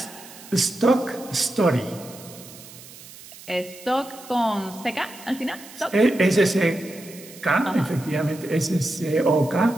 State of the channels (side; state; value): right; noise; hiss, 18 dB below the sound